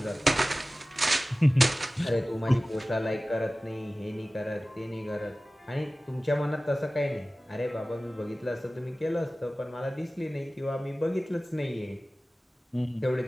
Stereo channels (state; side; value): normal; both; correlation 0.97